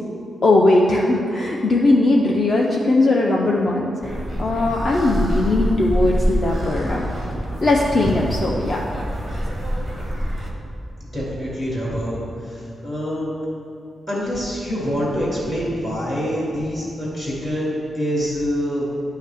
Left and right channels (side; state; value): both; normal; correlation 0.85